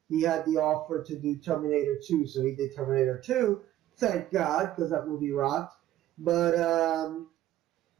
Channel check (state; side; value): quieter; left; 13.4 dB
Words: offer to do Terminator 2, so he did Terminator 2. Thank God, because that movie rocked. But,